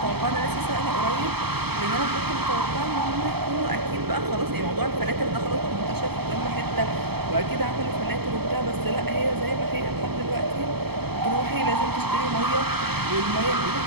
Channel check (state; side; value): late; left; 0.97 ms